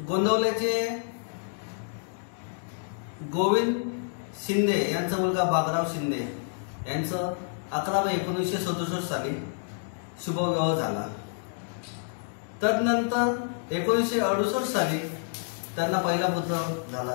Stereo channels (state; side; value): silent; right; digital silence